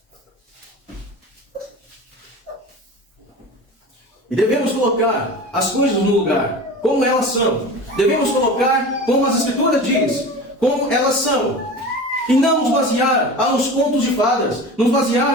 E devemos colocar as coisas no lugar, como elas são. Devemos colocar como as Escrituras diz, como elas são. E não nos basear a uns contos de fadas, nos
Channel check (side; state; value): both; normal; correlation 0.33